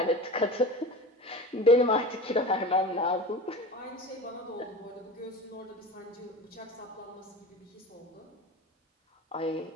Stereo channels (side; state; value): both; normal; correlation 0.33